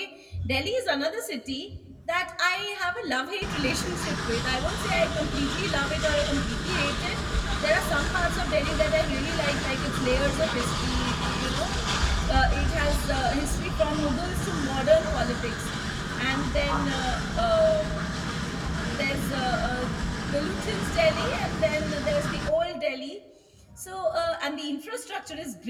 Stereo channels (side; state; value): both; identical; correlation 1.00